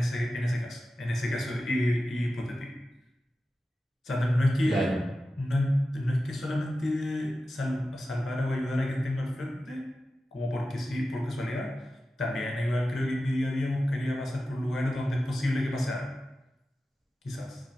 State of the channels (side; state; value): both; normal; correlation 0.93